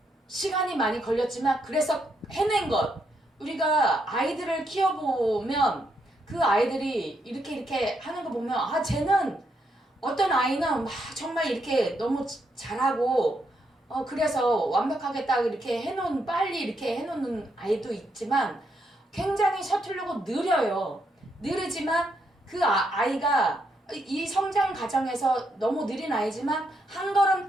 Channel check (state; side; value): normal; both; correlation 0.78